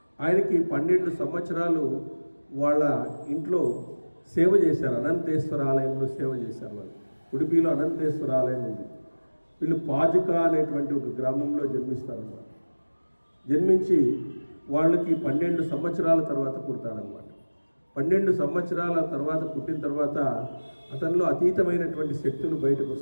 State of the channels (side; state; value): both; inverted; correlation -1.00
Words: ఆయనకి 12 సంవత్సరాలు వాళ్ళ ఇంట్లో సేవ చేశారు. అనంతేశ్వర ఆలయంలో సేవ చేశారు. వాళ్ళు ఉడిపిలో అనంతేశ్వర ఆలయం ఉంది. వీళ్ళు పాజుక అనేటువంటి ఒక గ్రామంలో జన్మిస్తారన్నమాట. జన్మించి వాళ్ళకి 12 సంవత్సరాల తర్వాత పుడతాడనమాట. 12 సంవత్సరాల తర్వాత పుట్టిన తర్వాత అతనిలో అతీతమైనటువంటి శక్తులు బయటకు